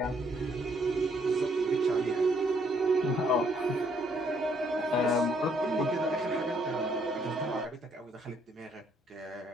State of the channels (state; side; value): normal; both; correlation 0.69